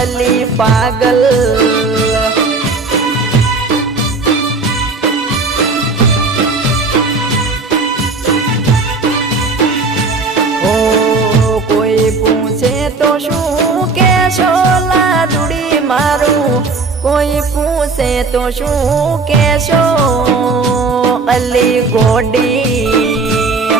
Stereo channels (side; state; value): left; quieter; 4.0 dB